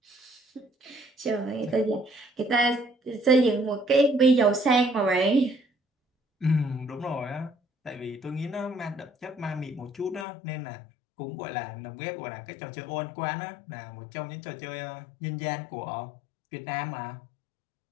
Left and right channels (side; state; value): right; drops out; at 10.2 s